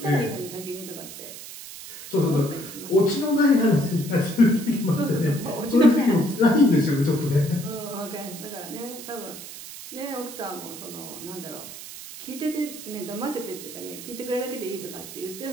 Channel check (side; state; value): right; noise; hiss, 12 dB below the sound